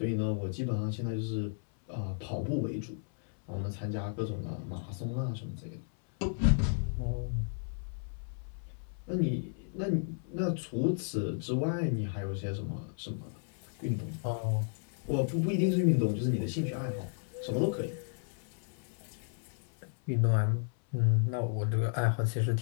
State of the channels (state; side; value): silent; right; 55 dB below the other